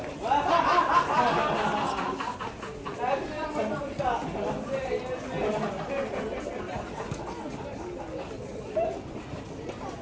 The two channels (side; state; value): both; identical; correlation 1.00